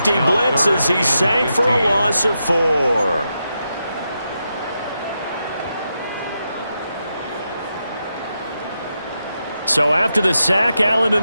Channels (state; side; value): inverted; both; correlation -0.86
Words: blitz as he sank for a loss of 4. So after the sack, Allen and